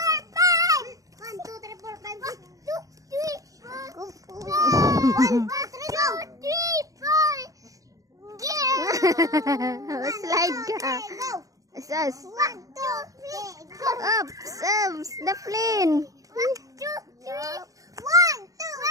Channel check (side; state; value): left; late; 0.17 ms